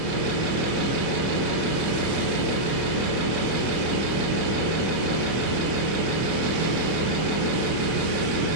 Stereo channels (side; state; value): left; late; 21 ms